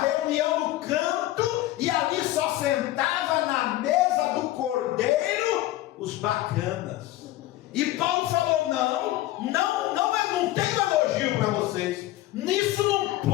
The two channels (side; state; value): right; quieter; 15.8 dB